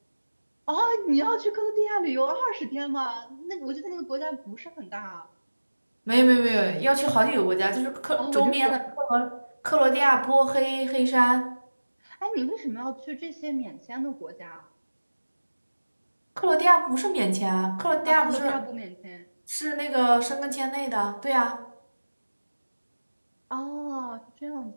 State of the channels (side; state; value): both; inverted; correlation -1.00